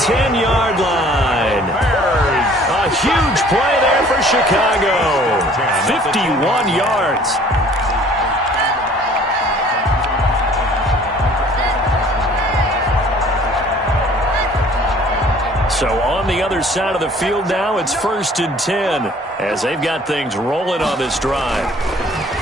line. A huge play there for Chicago. 51 yards. So on the other side of the field now, it's 1st and 10 as they've got things rolling on this drive.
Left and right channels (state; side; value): normal; both; correlation 0.53